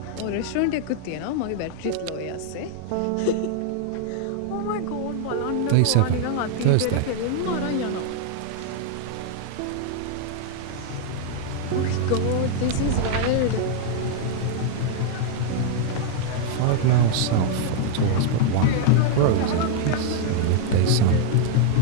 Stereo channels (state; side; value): different; both; correlation 0.00